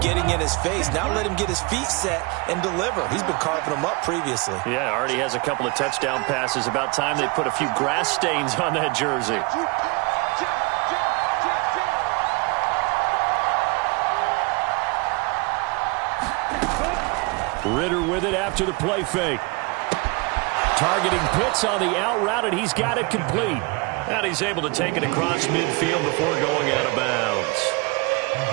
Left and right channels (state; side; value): quieter; left; 28.1 dB